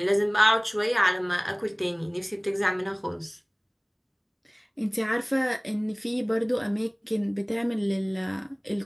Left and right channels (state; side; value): identical; both; correlation 1.00